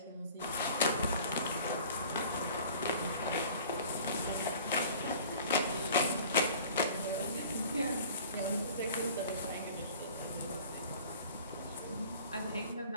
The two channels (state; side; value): inverted; both; correlation -0.46